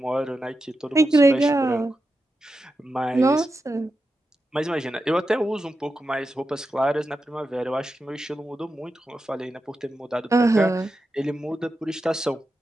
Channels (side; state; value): both; normal; correlation 0.89